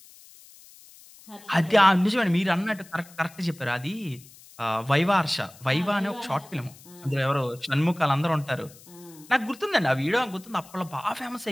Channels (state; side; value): noise; left; hiss, 22 dB below the sound